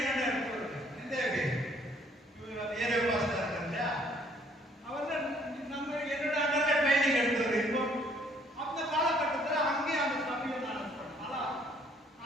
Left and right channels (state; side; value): normal; both; correlation 0.62